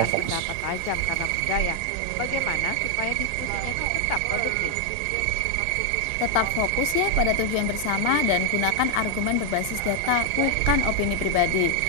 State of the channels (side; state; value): both; different; correlation 0.00